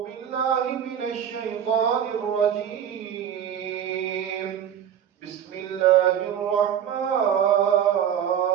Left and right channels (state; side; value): quieter; left; 9.3 dB